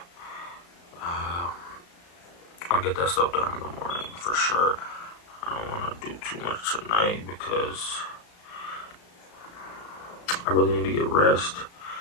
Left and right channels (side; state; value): right; late; 35 ms